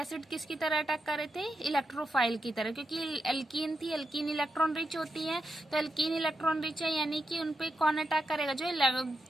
किसकी तरह अटैक कर रहे थे, इलेक्ट्रोफाइल की तरह, क्योंकि एल्कीन थी, एल्कीन इलेक्ट्रॉन रिच होती है। तो एल्कीन इलेक्ट्रॉन रिच है यानी कि उनपे कौन अटैक करेगा, जो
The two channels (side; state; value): both; normal; correlation 0.87